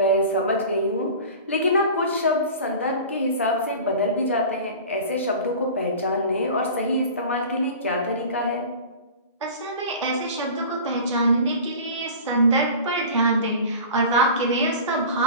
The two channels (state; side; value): inverted; both; correlation -0.37